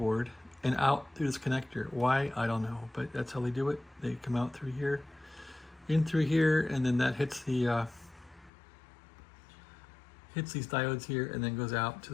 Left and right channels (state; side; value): drops out; right; at 8.5 s